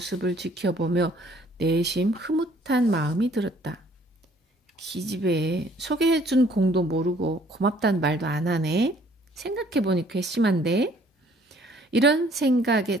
지켜보며 내심 흐뭇한 마음이 들었다. 기집애, 소개해준 공도 모르고 고맙다는 말도 안 하네. 생각해보니 괘씸한데. 이런 생각에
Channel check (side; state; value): both; normal; correlation 0.59